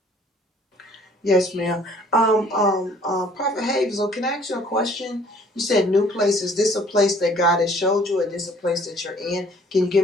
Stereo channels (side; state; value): both; normal; correlation 0.57